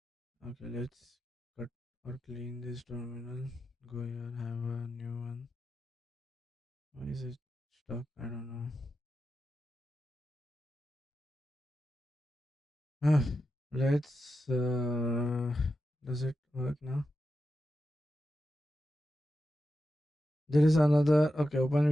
Okay, let's cut or clean this terminal. Go here, have a new one. Why is it stuck? I don't know. Ah, let's. Does it work now? There is another. Okay, open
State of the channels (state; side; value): normal; both; correlation 0.89